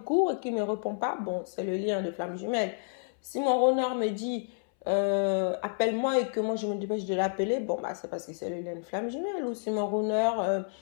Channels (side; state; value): right; silent; 58 dB below the other